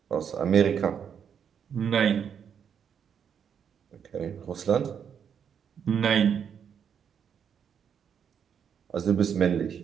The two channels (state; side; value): quieter; left; 7.8 dB